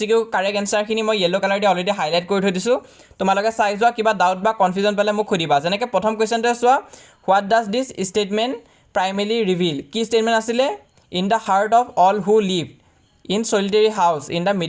correct answer khini moi yellow color de already highlight kori thoi disu tomaloke sai joa kiba doubt ba confusion pale muk khodiba jeneke prothom question te soa what does this statement primarily reveal ki statement asile in the heart of all who lived in solitary house in the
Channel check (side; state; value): both; identical; correlation 1.00